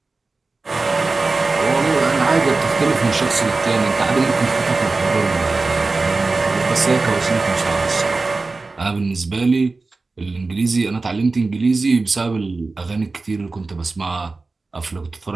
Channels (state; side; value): quieter; left; 3.7 dB